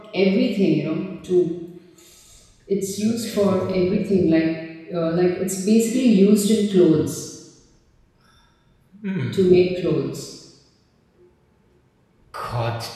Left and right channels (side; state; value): both; identical; correlation 1.00